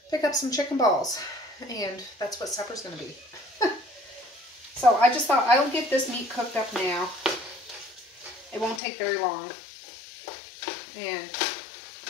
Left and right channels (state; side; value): drops out; right; at 8.8 s